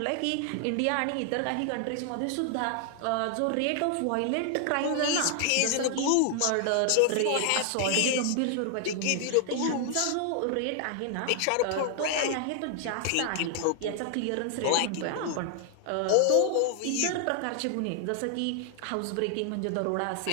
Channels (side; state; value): both; different; correlation 0.00